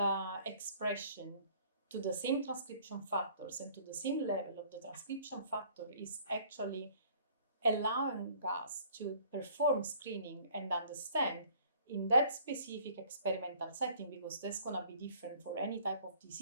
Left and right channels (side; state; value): both; inverted; correlation -0.55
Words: expression to the same transcription factors and to the same level of the transcription factor is actually allowing us to perform screening and understand in that specific experimental setting, because that's going to be different for any type of